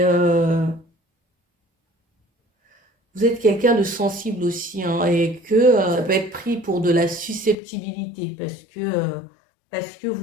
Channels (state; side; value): drops out; right; at 7.6 s